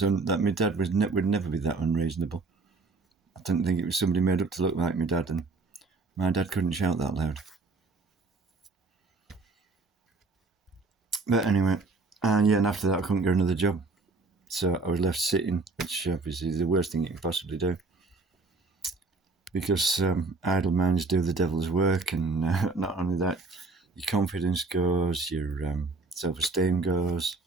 my dad would never be that unreasonable. I didn't think it was somebody made up to look like my dad, and my dad couldn't shout that loud. But anyway, and after that I couldn't get another job. So I was left sitting, which obviously is the worst thing you can possibly do. Because idle minds do the devil's work, and not only that, your confidence goes, your self-esteem goes,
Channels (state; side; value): quieter; left; 3.8 dB